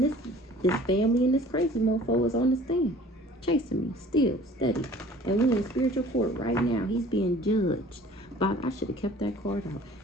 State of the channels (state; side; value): normal; both; correlation 0.49